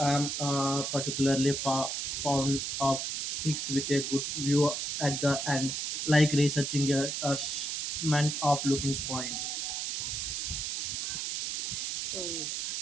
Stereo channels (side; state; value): right; noise; hiss, 2 dB below the sound